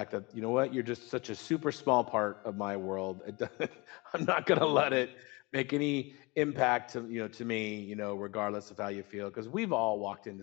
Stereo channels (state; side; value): quieter; right; 25.9 dB